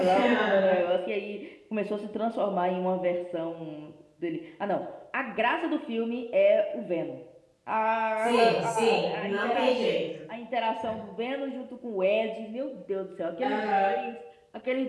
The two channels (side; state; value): both; identical; correlation 1.00